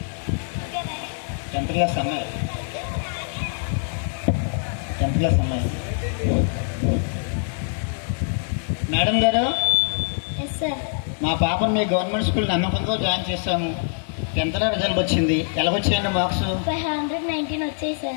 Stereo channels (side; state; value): right; silent; 63 dB below the other